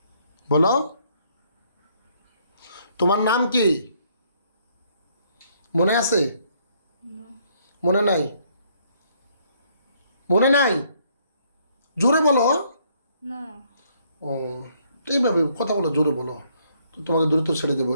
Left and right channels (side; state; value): both; inverted; correlation -0.68